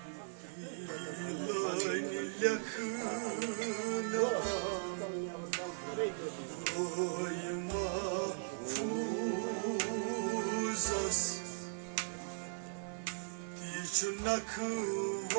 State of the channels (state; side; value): silent; left; 52 dB below the other